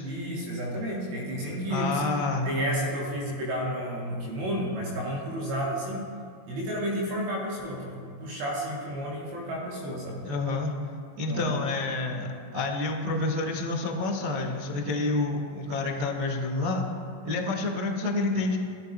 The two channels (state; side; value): late; left; 21 ms